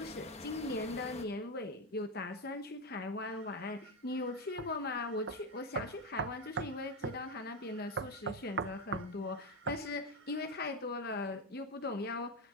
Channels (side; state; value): both; normal; correlation 0.10